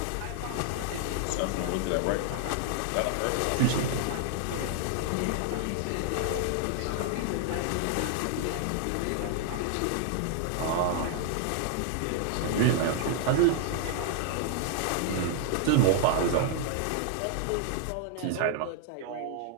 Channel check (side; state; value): both; different; correlation -0.01